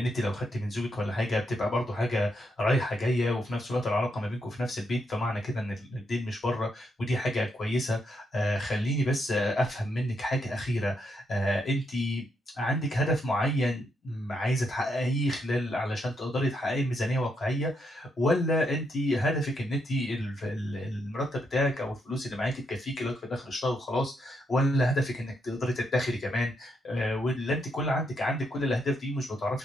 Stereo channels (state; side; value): normal; both; correlation 0.79